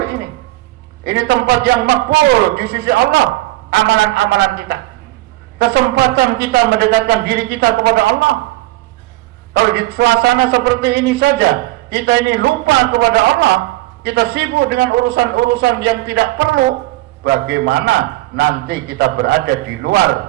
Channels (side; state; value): left; quieter; 18.4 dB